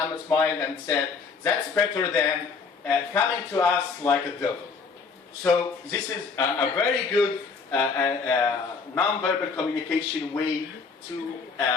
smiled and said, that's better than coming to us like a devil. So this is a very good non-verbal communication way to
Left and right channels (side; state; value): right; quieter; 5.0 dB